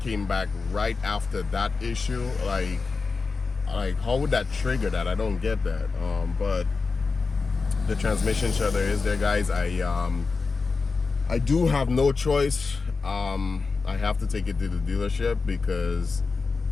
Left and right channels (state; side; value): quieter; right; 4.4 dB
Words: back right after that issue. Like how would that trigger that? I don't get that. But the transmission shudder is there, guys. I do have no choice. I have to take it to the dealership because